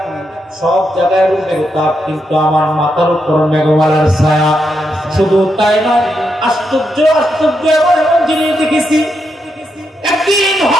সব জায়গায় মেঘতাপ, কিন্তু আমার মাথার উপর মেঘমালার ছায়া। শুধু তাই নয়, আশ্চর্য আশ্চর্য এমন জিনিস দেখেছি। একদিন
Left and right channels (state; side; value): normal; both; correlation 0.82